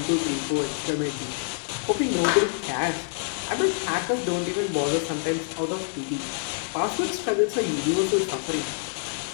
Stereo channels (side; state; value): right; silent; digital silence